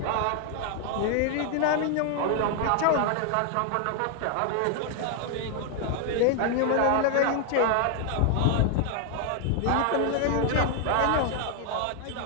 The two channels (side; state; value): both; different; correlation 0.00